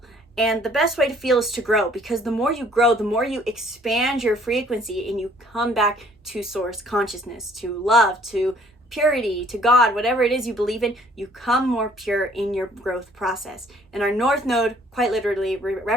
And the best way to feel is to grow, because the more you grow, the more you expand your frequency and you come back to source consciousness, to love, to purity, to God, whatever it is you believe in, you come more pure in your growth process. And our North Node, quite literally,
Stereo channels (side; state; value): both; normal; correlation 0.59